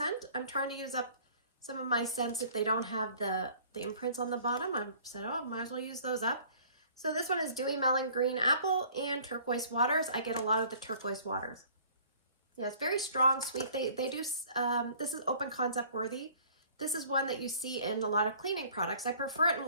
I'm trying to use up some of my scents if they don't have the imprints on the bottom. I said, oh, might as well use those up. So this one is Dewy Melon Green Apple and Turquoise Waters. I get a lot of the Turquoise Waters. Yeah, it's very strong, sweet. They do, this is open concept worthy. This is one that you see in a lot of cleaning products. I prefer it in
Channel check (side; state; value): both; inverted; correlation -0.53